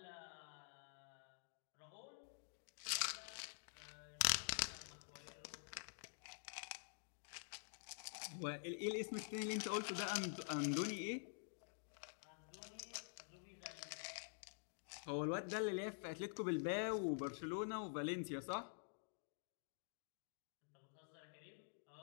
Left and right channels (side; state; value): right; silent; digital silence